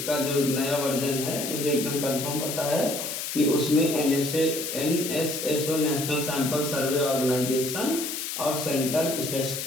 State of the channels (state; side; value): noise; left; hiss, 5 dB below the sound